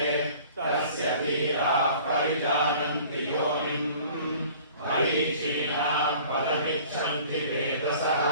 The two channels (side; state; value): both; inverted; correlation -0.48